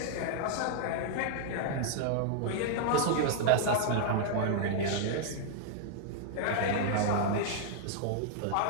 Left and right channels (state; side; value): different; both; correlation 0.00